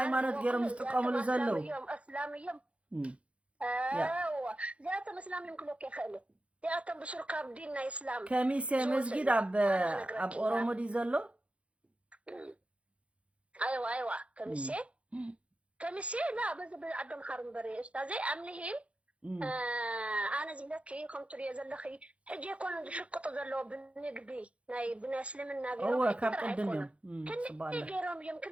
ገረም ዝጥቀሙሉ ዘለው اسلاميም ذات اسلاميም ክሎክ ይخل زياتهم بشركة بديننا إسلام كميسة مسجد أب أورمو دي زلو أيوة كميسة لا بس عندهم حرم بري أستاذي أمنهم أنا زلكي كنت لي زلخي حجي يكون شقط زلو بنقبي ناي بنسلمنا هو كاب قدمهم كني غيرهم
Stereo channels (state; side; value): late; left; 0.062 ms